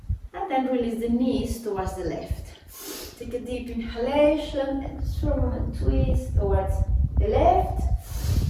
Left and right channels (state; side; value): identical; both; correlation 1.00